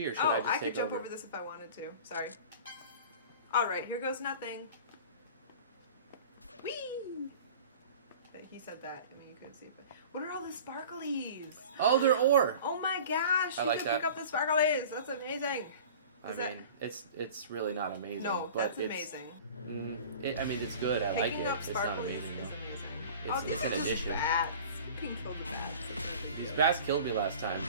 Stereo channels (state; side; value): inverted; both; correlation -0.40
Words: or should Oh, I just I take could jump over? over this if I wanted to. Sorry. All right, here goes nothing. Whee! He said that. I mean, you couldn't see it, but what are all the sparklies? Oh, they're ore. Oh my gosh! I You like can that. pick up the sparklies. That's amazing. I Is that- mean, it's really not amazing. No, but that's it's, amazing. I mean, it's good. I like Picking it. up It's not sparklies amazing is though. amazing. It's these an are just addition. Bats. You can kill the bats. It's no big These deal. bats killed me last time.